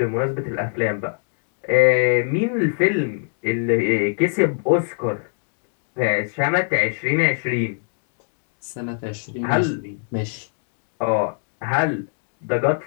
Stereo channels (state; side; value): silent; right; digital silence